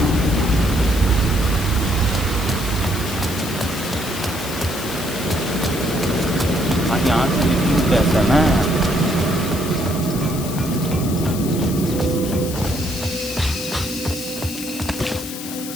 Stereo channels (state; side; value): noise; left; hiss, 10 dB below the sound